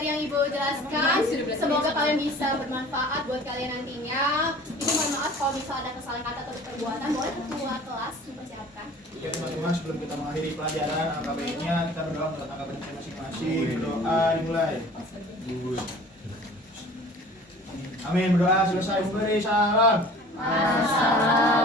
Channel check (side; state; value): both; normal; correlation 0.46